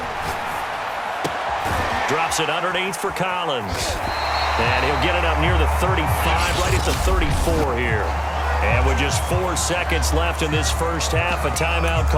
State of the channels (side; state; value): both; identical; correlation 1.00